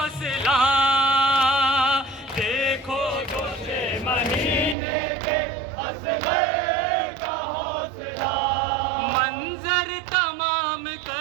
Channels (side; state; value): left; drops out; at 4.8 s